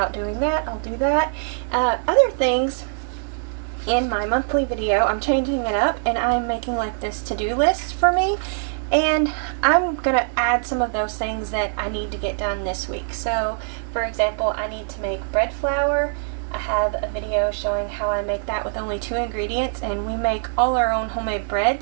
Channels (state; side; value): silent; left; digital silence